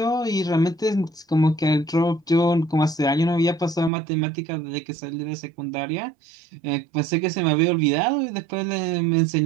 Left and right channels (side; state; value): left; drops out; at 3.9 s